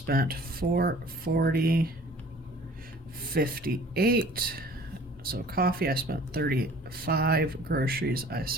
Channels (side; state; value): both; normal; correlation 0.50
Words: $440.58. So coffee, I spent $35. Groceries, I